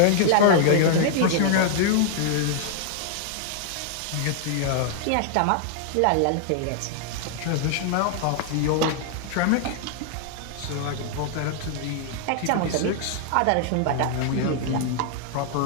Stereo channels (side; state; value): both; different; correlation 0.00